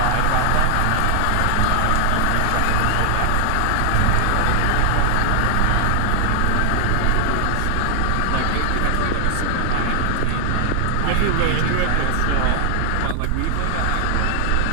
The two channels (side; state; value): both; different; correlation 0.00